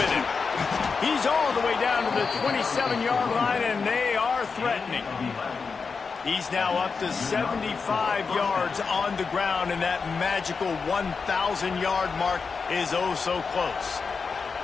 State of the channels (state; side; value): quieter; right; 5.1 dB